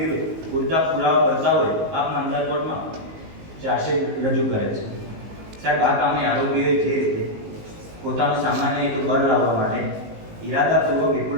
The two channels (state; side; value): late; left; 19 ms